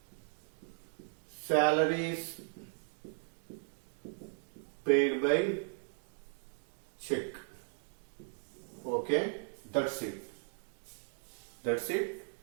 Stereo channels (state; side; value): silent; left; 53 dB below the other